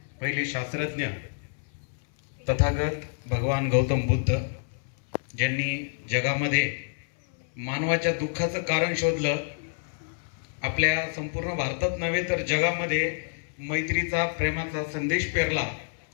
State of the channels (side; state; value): right; silent; 60 dB below the other